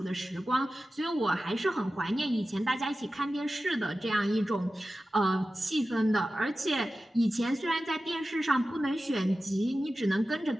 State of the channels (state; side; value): normal; both; correlation 0.94